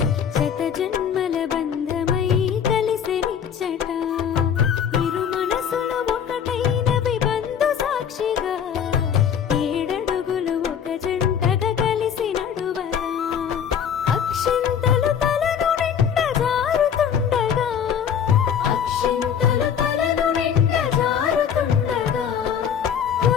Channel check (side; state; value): right; quieter; 8.1 dB